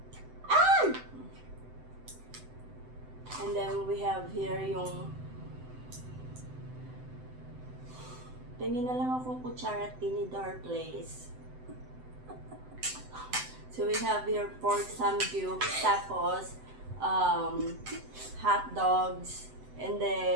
And then we have here yung tingin na lang akong kutsara tinidor place. So we have here pork samgyup, tapos hot dogs, and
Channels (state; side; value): late; left; 7.9 ms